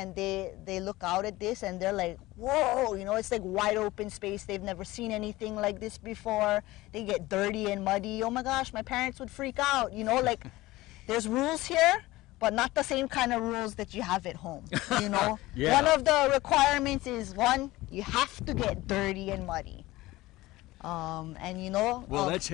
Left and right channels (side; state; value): right; quieter; 18.7 dB